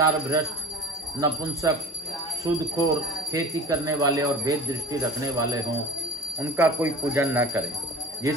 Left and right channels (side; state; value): both; normal; correlation 0.37